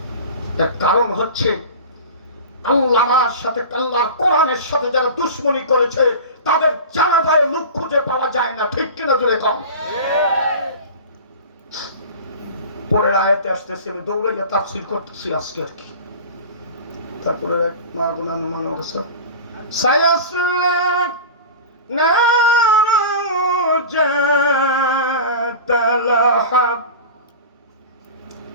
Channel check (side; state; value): both; inverted; correlation -0.33